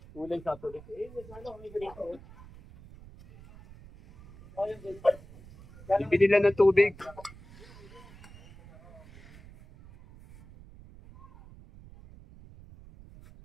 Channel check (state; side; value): noise; right; rumble, 20 dB below the sound